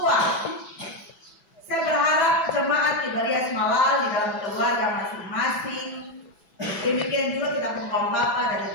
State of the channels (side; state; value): right; late; 6.0 ms